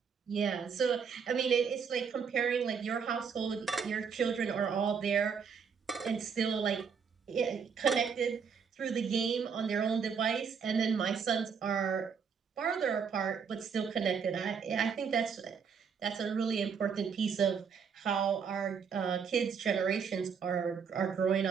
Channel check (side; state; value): left; quieter; 6.4 dB